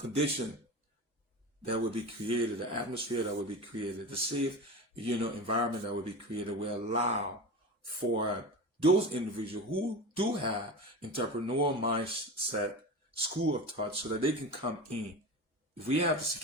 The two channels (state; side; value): late; left; 1.2 ms